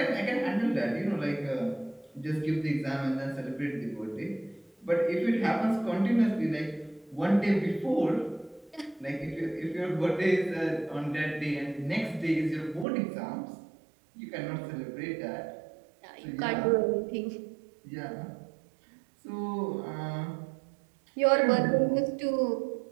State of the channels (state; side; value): drops out; left; at 12.9 s